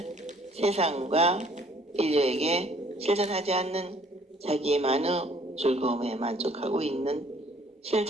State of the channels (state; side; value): normal; both; correlation 0.59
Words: 세상과 인류에게 실천하지 않는 자기만의 즐거움에 만족하고 있는